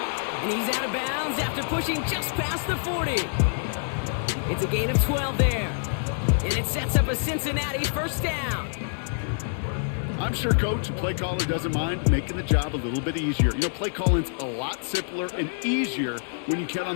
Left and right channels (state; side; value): silent; right; digital silence